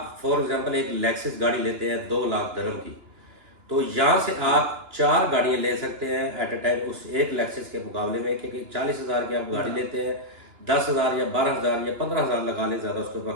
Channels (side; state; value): left; late; 2.9 ms